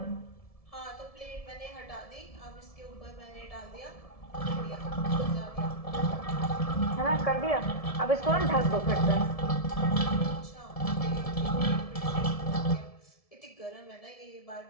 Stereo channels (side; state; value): right; late; 1.7 ms